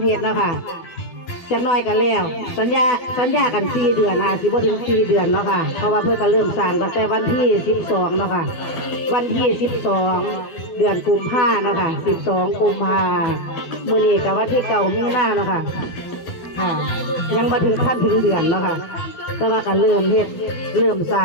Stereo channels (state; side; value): late; right; 12 ms